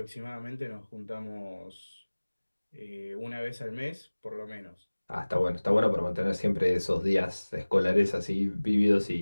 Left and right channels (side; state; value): both; inverted; correlation -1.00